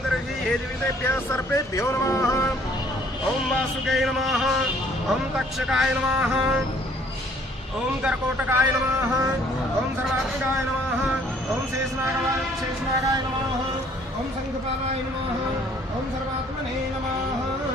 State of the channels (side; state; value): both; normal; correlation 0.59